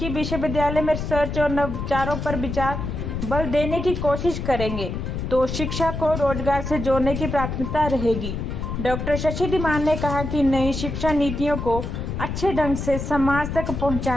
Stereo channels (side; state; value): left; noise; rumble, 4 dB below the sound